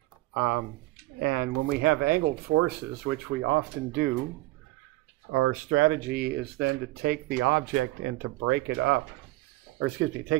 And when we have angled forces, which we often do, our strategy is then to take the object and to break it up. Or excuse me,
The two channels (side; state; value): left; quieter; 19.1 dB